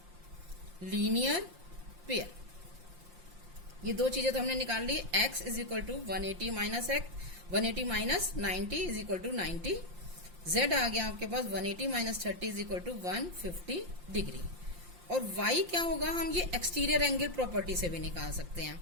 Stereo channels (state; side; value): late; left; 5.7 ms